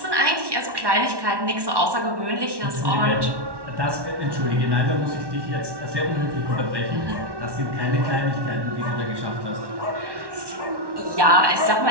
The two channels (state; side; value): late; left; 1.1 ms